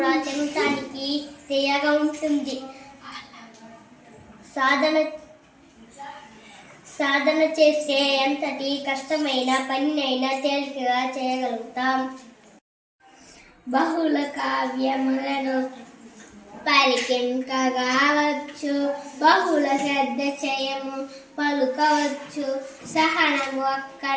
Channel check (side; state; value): both; identical; correlation 1.00